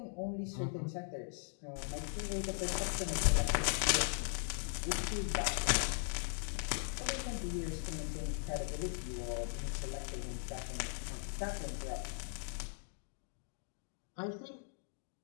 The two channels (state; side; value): silent; right; digital silence